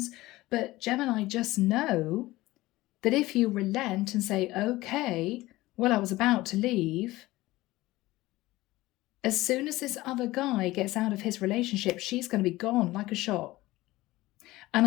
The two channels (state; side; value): quieter; right; 18.4 dB